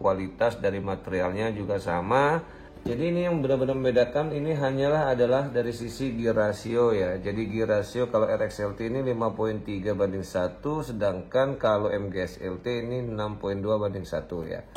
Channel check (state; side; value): identical; both; correlation 1.00